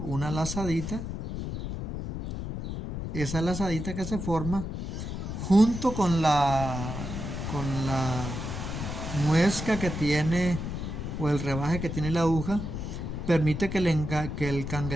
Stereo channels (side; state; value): left; noise; rumble, 5 dB below the sound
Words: lazadita. Esa lazadita que se forma junto con la muesca que tiene, o el rebaje que tiene la aguja, permite que el